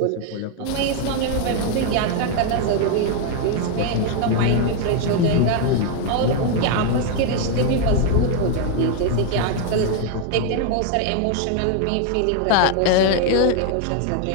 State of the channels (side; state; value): both; different; correlation 0.00